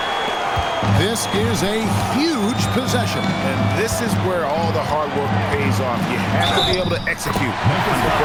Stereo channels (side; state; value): both; identical; correlation 1.00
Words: This is a huge possession. And this is where all the hard work pays off. You have to be able to execute under